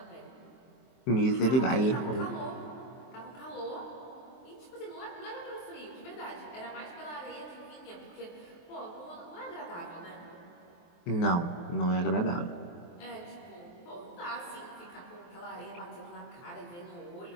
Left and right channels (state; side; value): late; right; 23 ms